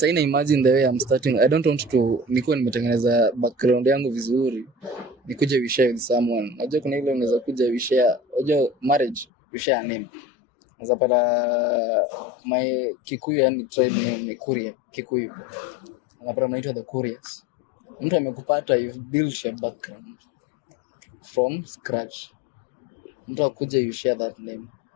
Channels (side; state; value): right; drops out; at 9.2 s